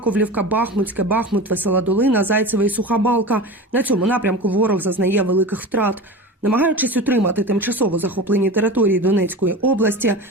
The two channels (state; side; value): normal; both; correlation 0.30